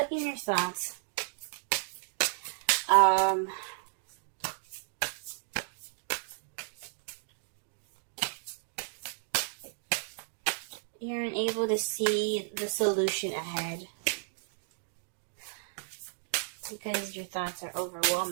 in your thoughts. You're unable to see the solution ahead because your thoughts are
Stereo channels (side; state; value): left; silent; digital silence